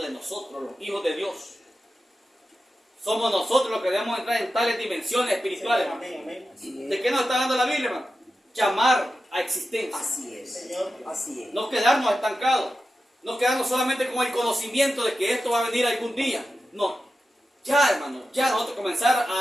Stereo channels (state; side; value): normal; both; correlation 0.91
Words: de nosotros, los hijos de Dios. Somos nosotros los que debemos entrar en tales dimensiones espirituales. ¿De qué nos está dando la Biblia, hermano? Llamar a existencia. Así es. Así es. No quedarnos estancados. No quedarnos solamente con el conocimiento de que esto va a venir algún día. No. Ya, hermano, ya nosotros comenzar